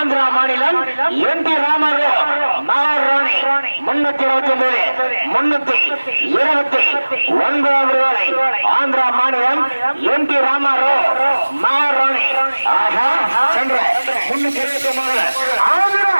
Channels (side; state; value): both; inverted; correlation -1.00